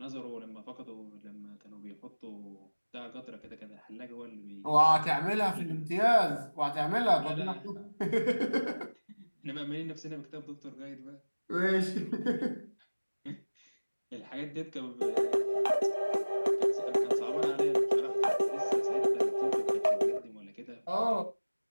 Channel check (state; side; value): inverted; both; correlation -1.00